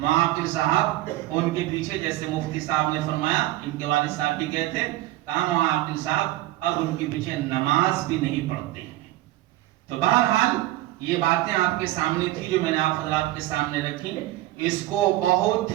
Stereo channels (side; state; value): left; quieter; 16.0 dB